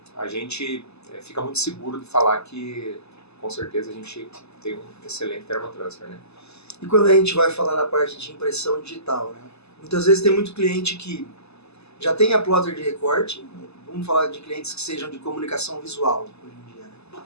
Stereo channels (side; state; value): right; late; 0.79 ms